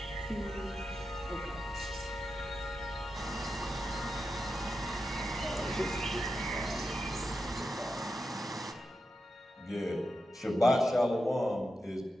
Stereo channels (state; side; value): normal; both; correlation 0.89